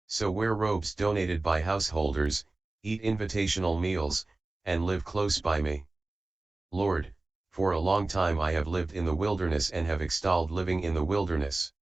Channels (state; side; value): quieter; left; 3.1 dB